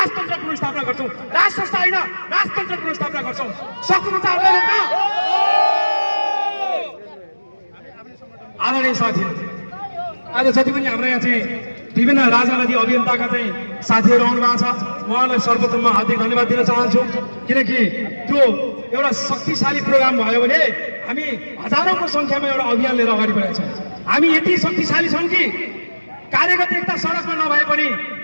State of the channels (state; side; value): inverted; both; correlation -1.00